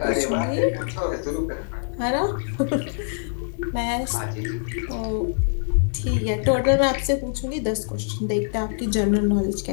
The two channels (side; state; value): right; silent; 62 dB below the other